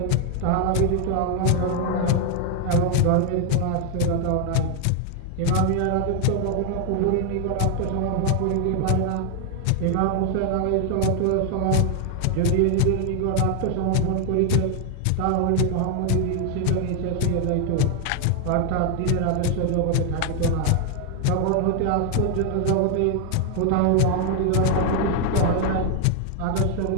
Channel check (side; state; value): both; different; correlation 0.00